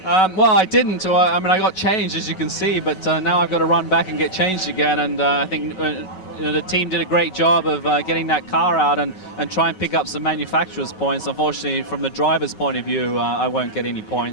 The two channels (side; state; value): right; late; 5.3 ms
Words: Well, I didn't. I mean, I got changed, as you can see, but now I've got to run back and get changed again. And I think you know, the team did a great job of getting that car out and try and pick up some manufacturer's points. Unfortunately, from the driver's point of view, I won't get any